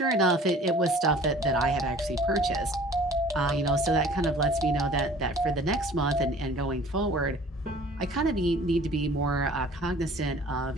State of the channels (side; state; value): both; normal; correlation 0.49